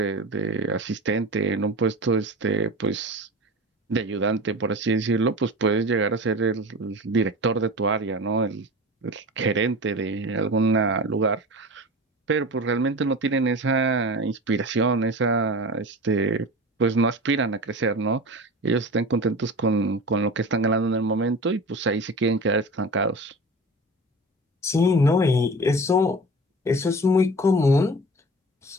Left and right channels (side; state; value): both; normal; correlation 0.33